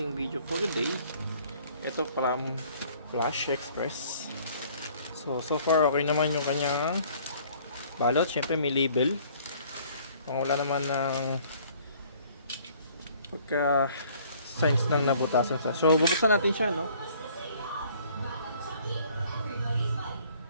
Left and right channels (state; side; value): inverted; both; correlation -0.57